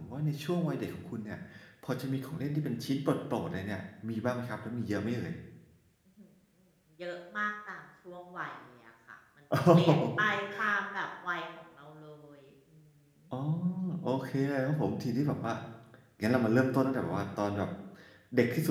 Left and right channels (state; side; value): identical; both; correlation 1.00